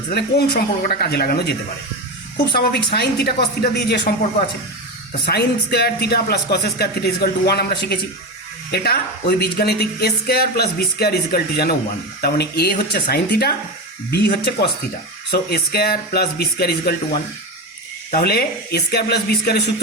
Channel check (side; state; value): both; normal; correlation 0.18